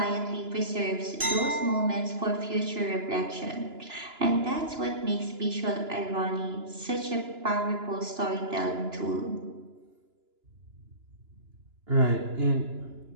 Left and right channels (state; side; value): late; left; 2.9 ms